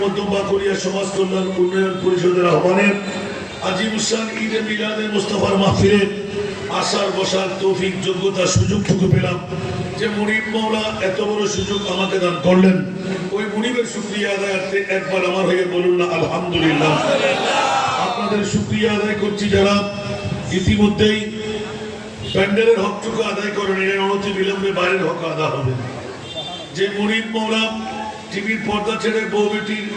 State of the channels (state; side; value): identical; both; correlation 1.00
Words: মধ্যম বাকুড়িয়া সমাজ কল্যাণ উন্নয়ন পরিষদের আহ্বানে আজিমুসান ঈদে মিলাদে মুস্তাফার মাহফিলে আসার বসার তৌফিক যোগ্যতা সুযোগটুকু পেলাম যে মুনিব মাওলা এত বড় সুযোগ আমাকে দান করলেন। ওই মুনিবের শুকরিয়া আদায়ার্থে একবার আমার হয়ে বলুন না আলহামদুলিল্লাহ। আপনাদের শুকরিয়া আদায় করছি যারা ইতিমধ্যেই প্যান্ডেলের হকটুকু আদায় করেন, এর অনতি বিলম্বে বাইরের হক আদা হবে। যে মুনিব মাওলা টিভির পর্দা ছেড়ে বউ বেটির